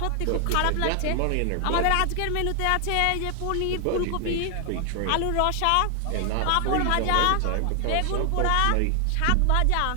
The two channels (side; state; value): both; different; correlation 0.00